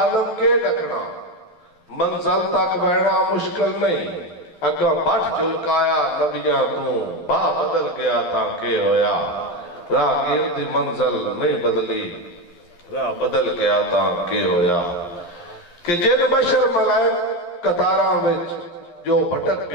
کے ڈکنا منزل تک بہنا مشکل نہیں، اگاں بھٹ جلکایا نبیاں تو با بدل گیا تھا کہ ہویا، راہ گیرتی منزل نہیں بدلی، راہ بدل گیا تھا کہ ہویا، کہ جن بشر ملائک قطاراں وچ جو بھٹک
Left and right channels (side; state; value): right; late; 12 ms